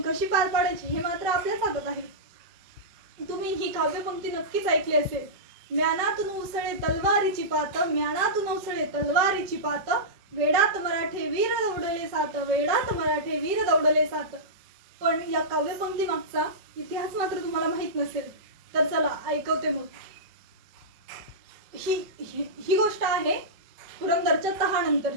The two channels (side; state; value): left; late; 5.4 ms